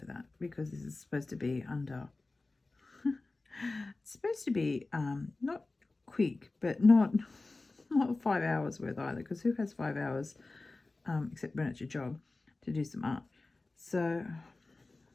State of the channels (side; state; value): right; quieter; 3.3 dB